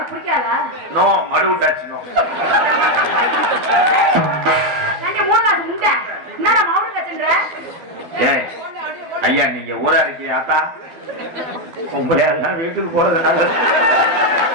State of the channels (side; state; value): left; late; 12 ms